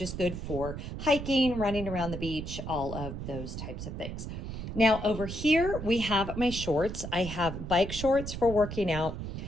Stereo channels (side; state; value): right; noise; rumble, 7 dB below the sound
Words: good for hiking, running around the beach, all of those types of things. Now over here, we have my shorts. I have bike shorts for working out,